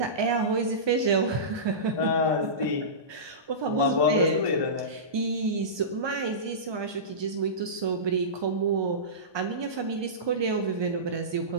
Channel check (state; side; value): late; left; 1.2 ms